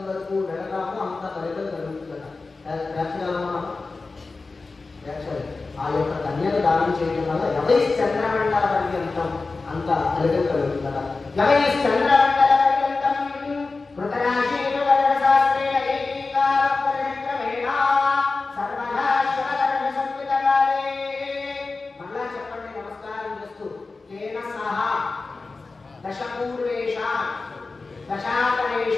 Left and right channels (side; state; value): right; quieter; 3.8 dB